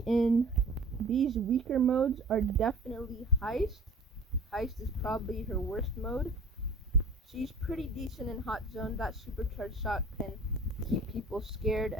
weaker modes are definitely Heist. Heist is probably her worst mode. She's pretty decent in Hot Zone. That supercharged shot can keep people scared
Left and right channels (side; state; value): both; normal; correlation 0.44